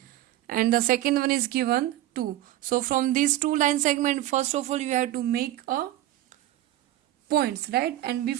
and the second one is given 2. So from these two line segment, first of all you have to make a points, right? And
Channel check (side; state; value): left; quieter; 14.5 dB